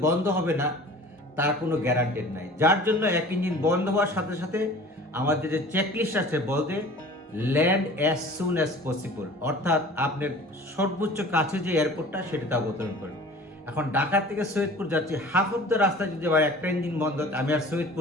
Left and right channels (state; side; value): normal; both; correlation 0.44